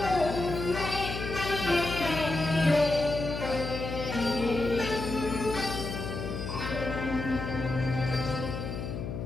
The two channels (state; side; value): noise; left; hum, 5 dB below the sound